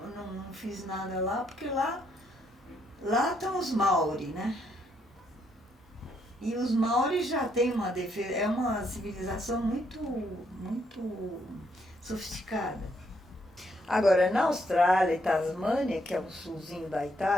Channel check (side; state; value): both; normal; correlation 0.73